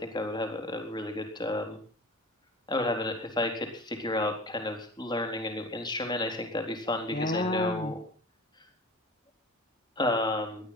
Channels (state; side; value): normal; both; correlation 0.37